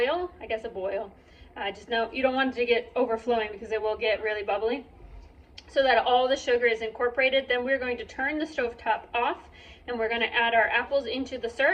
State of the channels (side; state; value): both; identical; correlation 1.00